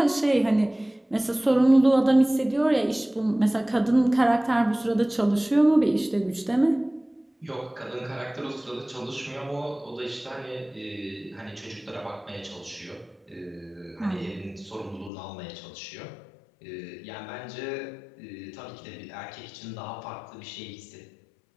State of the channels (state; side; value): drops out; right; at 15.1 s